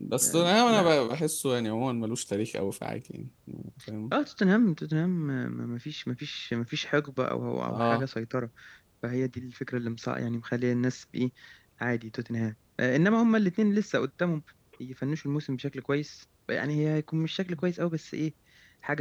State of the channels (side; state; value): both; identical; correlation 1.00